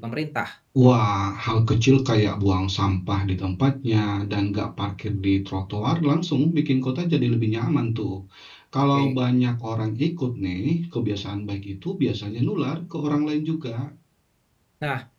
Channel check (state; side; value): identical; both; correlation 1.00